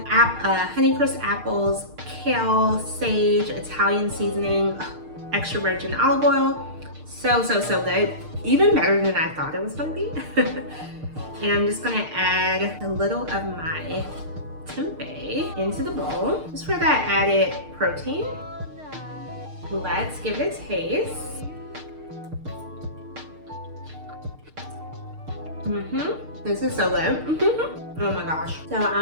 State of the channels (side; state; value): left; late; 6.6 ms